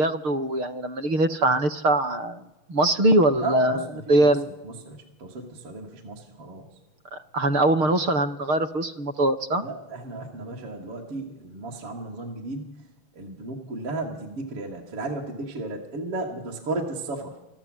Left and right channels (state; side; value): late; left; 6.6 ms